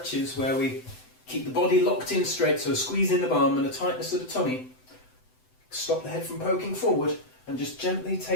where we keep the body locked in straight, so a squeeze in the bum and a tightness of the tummy. Stop the head from poking forward and just gently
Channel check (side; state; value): right; late; 7.9 ms